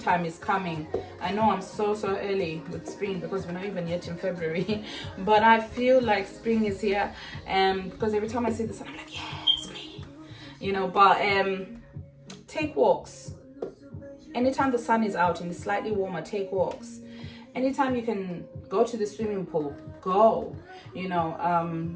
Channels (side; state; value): both; identical; correlation 1.00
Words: is coming. I know I'm so early with spring, because we're not even yet in February, but I feel like spring is here, because every time I see this, I'm like, yeah, spring, but take walks. Anytime the sun is out and it's slightly warmer, take walks. Anytime you can go to the swimming pool, go.